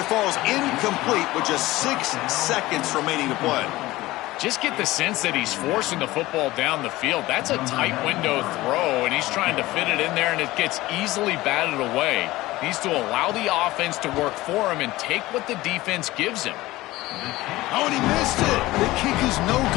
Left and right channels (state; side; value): quieter; right; 18.2 dB